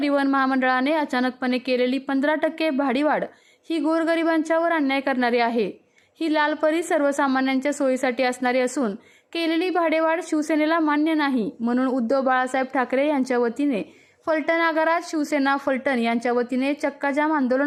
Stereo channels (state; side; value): identical; both; correlation 1.00